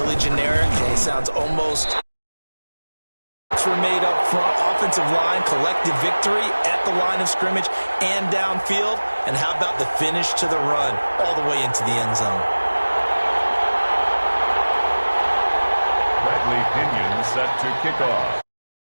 generic, and it sounds almost were made up front, offensive line, collective victory at the line of scrimmage and downfield. And how about the finish to the run all the way into the end zone? Bradley Pinion set to kick off.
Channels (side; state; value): both; inverted; correlation -1.00